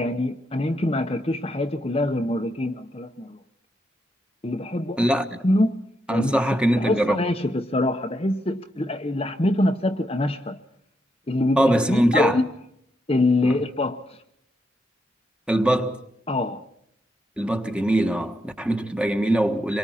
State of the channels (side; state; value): both; normal; correlation 0.81